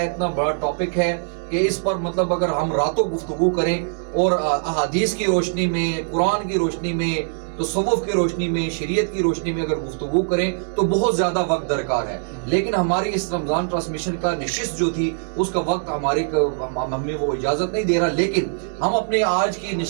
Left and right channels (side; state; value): left; silent; digital silence